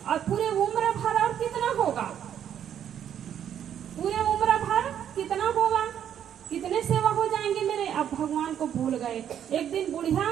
और पूरे उम्र भर और कितना होगा, पूरे उम्र भर कितना होगा, कितने सेवा हो जाएंगे मेरे। अब भगवान को भूल गए। एक दिन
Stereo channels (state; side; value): quieter; left; 9.5 dB